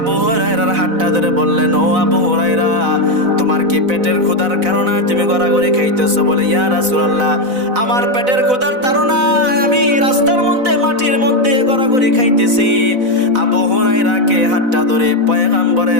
হুরায়রার হাতটা ধরে বললেন, ও আবু হুরায়রা, তোমার কি পেটের ক্ষুধার কারণে তুমি গড়াগড়ি খাইতেছো? বলে, ইয়া রাসূলুল্লাহ, আমার পেটের ক্ষুধার তাড়নায় আমি রাস্তার মধ্যে মাটির মধ্যে গড়াগড়ি খাইতেছি। আবু হুরায়রাকে হাতটা ধরে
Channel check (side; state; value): left; late; 4.0 ms